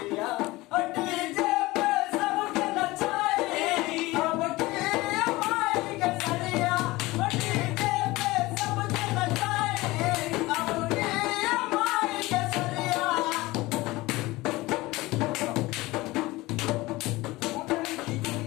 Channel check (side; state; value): right; quieter; 20.1 dB